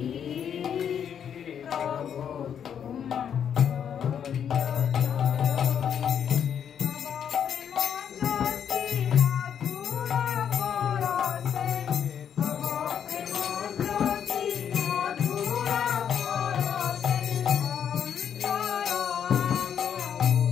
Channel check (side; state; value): right; quieter; 8.4 dB